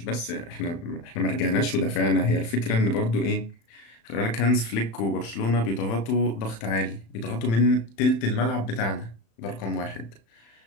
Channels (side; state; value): right; late; 35 ms